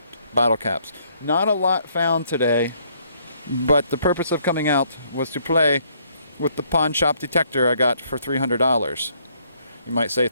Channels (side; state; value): both; inverted; correlation -0.67